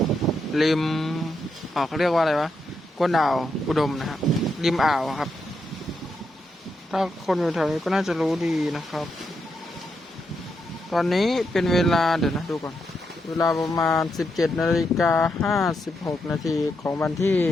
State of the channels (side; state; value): both; normal; correlation 0.82